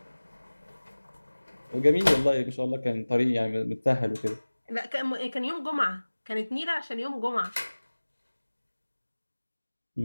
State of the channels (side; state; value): both; inverted; correlation -1.00